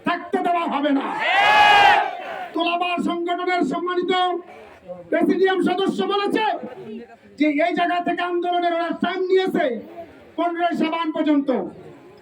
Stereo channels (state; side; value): identical; both; correlation 1.00